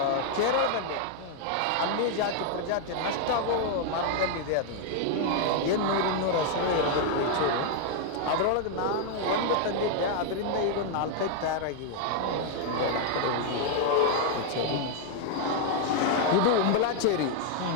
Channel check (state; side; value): different; both; correlation 0.00